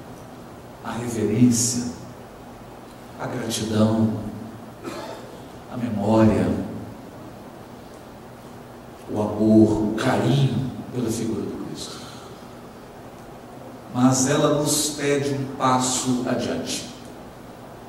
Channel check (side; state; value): both; identical; correlation 1.00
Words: a reverência, a gratidão, a memória, o amor, o carinho pela figura do Cristo. Mas ela nos pede um passo adiante.